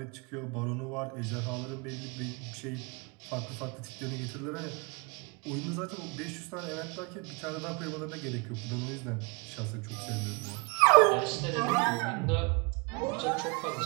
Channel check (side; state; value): left; quieter; 30.7 dB